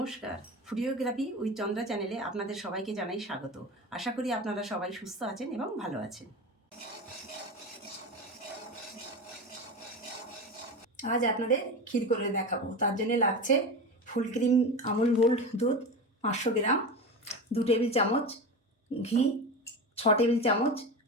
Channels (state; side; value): normal; both; correlation 0.25